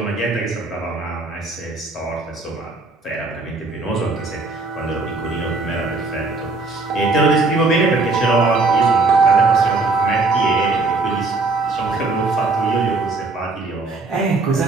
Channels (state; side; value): quieter; left; 3.6 dB